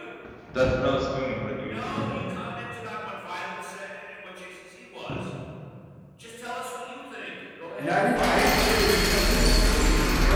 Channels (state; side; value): identical; both; correlation 1.00